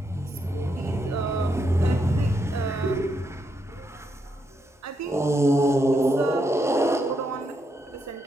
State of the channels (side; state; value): both; normal; correlation 0.79